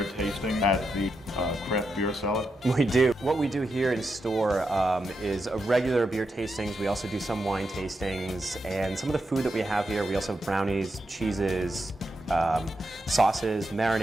tasting at the Craft Beer Cellar? We do. What we do here in store is regular beer tastings. We also do some wine tastings, and some of the food that we have here, we also have brownies, cheeses, sauces,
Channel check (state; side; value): normal; both; correlation 0.85